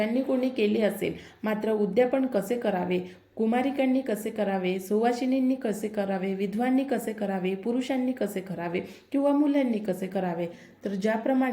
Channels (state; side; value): identical; both; correlation 1.00